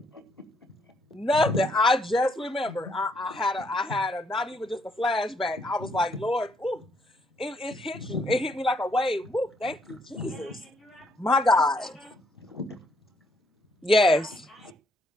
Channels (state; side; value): normal; both; correlation 0.71